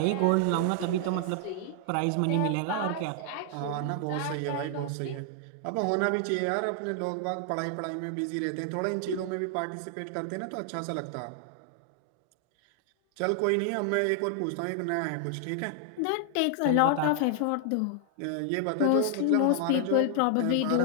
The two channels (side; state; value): both; different; correlation 0.00